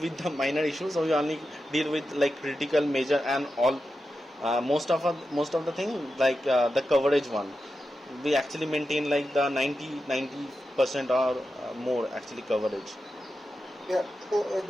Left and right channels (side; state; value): both; normal; correlation 0.90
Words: the minor issues, so we only deal with like critical, major and all. Most of the thing like the coverage one, we actually maintain like the 90% or more actually coverage. Yeah. So